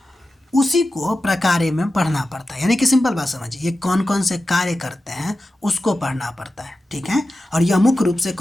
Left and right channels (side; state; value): both; normal; correlation 0.93